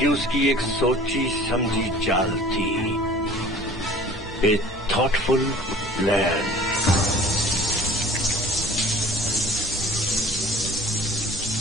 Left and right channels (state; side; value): noise; right; hum, 17 dB below the sound